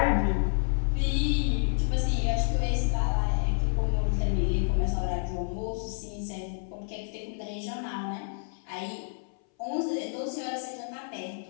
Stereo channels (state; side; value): silent; right; 58 dB below the other